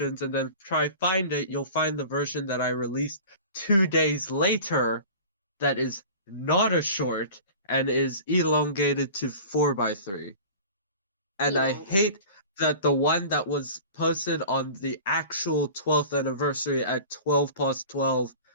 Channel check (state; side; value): inverted; both; correlation -0.39